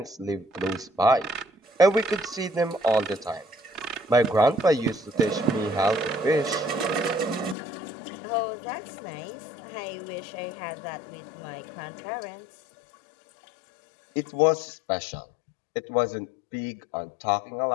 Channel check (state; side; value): drops out; right; at 7.6 s